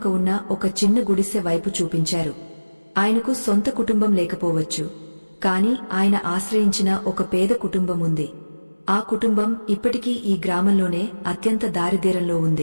ఉన్న ఒక చిన్న గుడిసె వైపు చూపించారు. ఆయనకు సొంత కుటుంబం లేకపోవచ్చు, కాని ఆయన ఆశ్రయించిన ఒక పేద కుటుంబం ఉంది. ఆ కుటుంబం ఇప్పటికీ ఈ గ్రామంలోనే అత్యంత దారిద్ర్యంలో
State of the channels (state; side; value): inverted; both; correlation -1.00